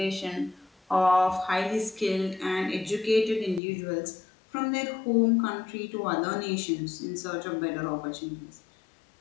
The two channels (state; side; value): drops out; right; at 3.6 s